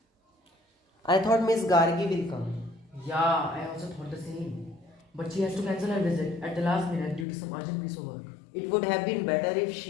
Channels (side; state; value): right; drops out; at 7.2 s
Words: I thought Miss Gargi will come. Yeah, I also thought the same. But she has to cancel her visit at the last minute due to some urgent piece of work. It would have been better if